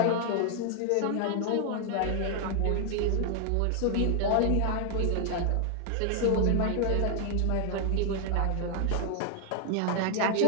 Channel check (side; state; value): both; different; correlation 0.00